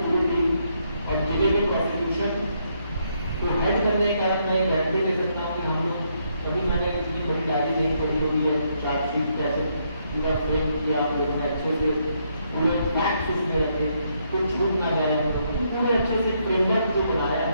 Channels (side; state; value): both; inverted; correlation -0.75